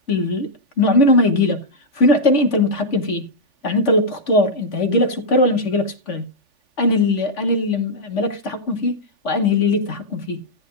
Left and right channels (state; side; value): late; right; 3.5 ms